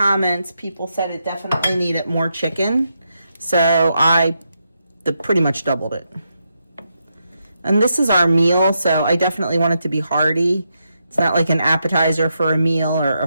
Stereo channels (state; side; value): inverted; both; correlation -0.83